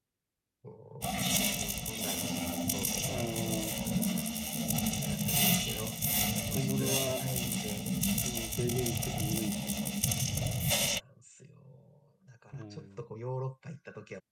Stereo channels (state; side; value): identical; both; correlation 1.00